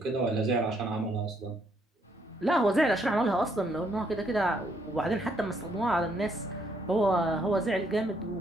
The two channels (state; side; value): normal; both; correlation 0.71